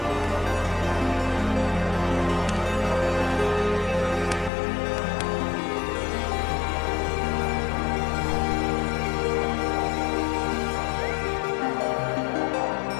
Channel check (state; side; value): drops out; right; at 4.5 s